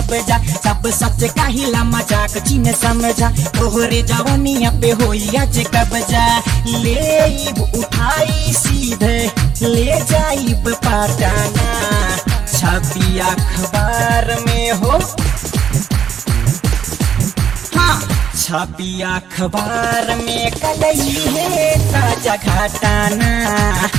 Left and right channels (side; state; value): left; quieter; 8.2 dB